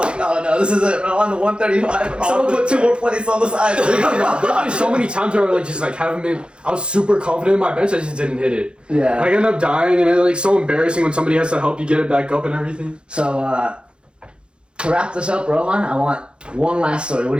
no, this is it. I'm on the 135. Someone put 2 more plates on the side. There's so many times where I like just like haven't been. I was super confident in my bench. I just didn't hit it. Yeah. I end up dying, and it's like so embarrassing when somebody has to help you get it back up and everything. So to wrap this up, Rohan, I want one last story. What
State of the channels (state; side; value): late; left; 0.055 ms